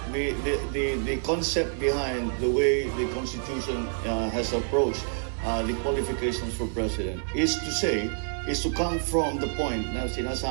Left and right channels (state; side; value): silent; left; digital silence